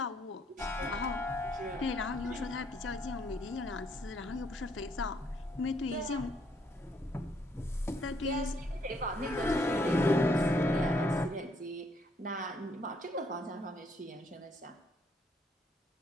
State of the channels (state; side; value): normal; both; correlation 0.70